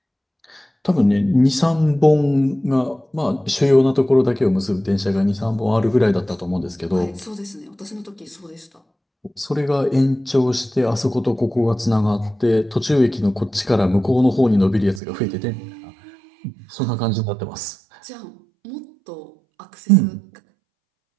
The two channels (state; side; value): drops out; left; at 15.0 s